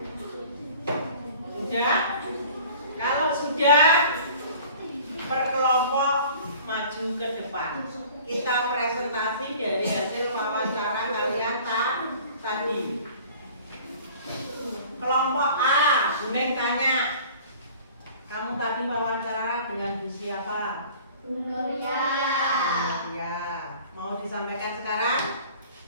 Sudah? Kalau sudah, per kelompok maju ke depan. Kita presentasi dari hasil wawancara kalian tadi. Kelompok A, Buneng tanya, kamu tadi wawancara dengan Bu siapa? Bu Nuria. Ya, mau disampaikan sekarang?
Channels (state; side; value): inverted; both; correlation -0.47